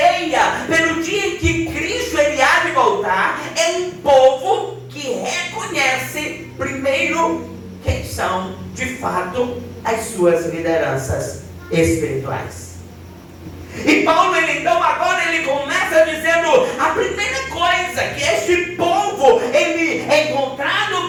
pelo dia em que Cristo ele há de voltar. É um povo que reconhece primeiro quem são de fato as suas lideranças espirituais. E Paulo, então agora ele começa dizendo a primeira coisa, que este povo, ele é encontrado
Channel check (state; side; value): identical; both; correlation 1.00